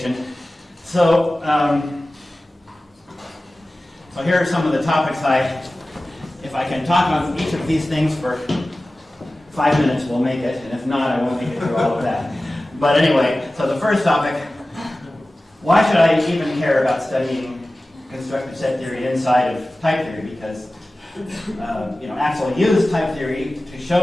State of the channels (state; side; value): normal; both; correlation 0.96